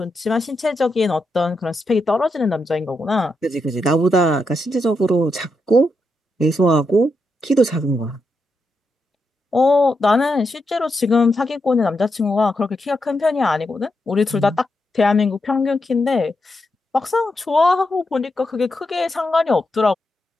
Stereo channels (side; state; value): both; normal; correlation 0.84